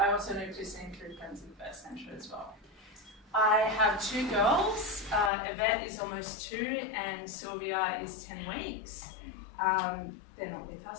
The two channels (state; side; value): drops out; right; at 5.3 s